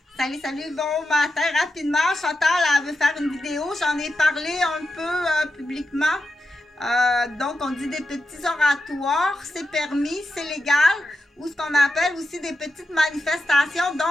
Salut, salut, bon matin. Rapidement, Chantal, elle veut faire une vidéo. J'en ai parlé un peu publiquement. Donc, on dit des petits oratoires. C'est permis, c'est légal. Ou ce qu'on appelle aussi des petites manifestations.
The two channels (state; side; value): normal; both; correlation 0.88